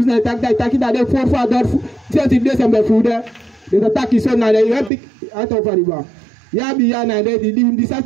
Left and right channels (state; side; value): drops out; left; at 4.9 s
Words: tak da de for father senti de sembe fude. De tak iso na de epic out of river. Ya bi ya na de di